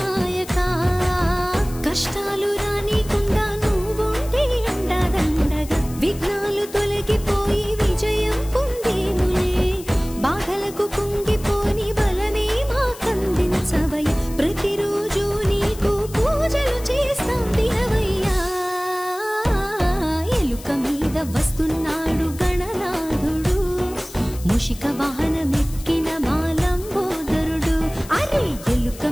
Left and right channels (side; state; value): left; noise; hiss, 17 dB below the sound